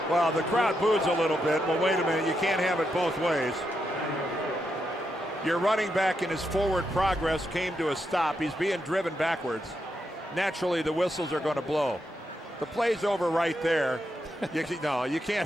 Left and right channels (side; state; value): both; normal; correlation 0.83